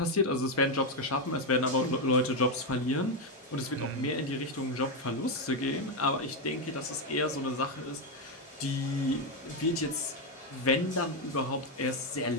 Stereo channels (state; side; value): normal; both; correlation 0.05